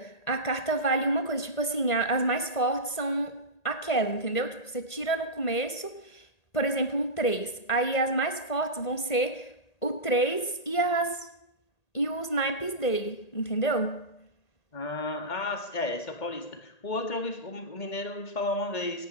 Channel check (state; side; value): late; right; 1.5 ms